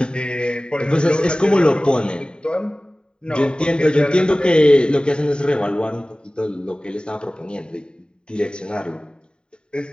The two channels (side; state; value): right; late; 0.049 ms